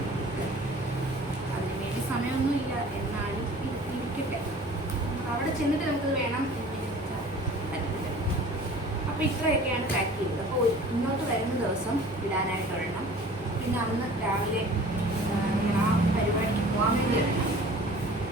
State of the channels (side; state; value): both; normal; correlation 0.46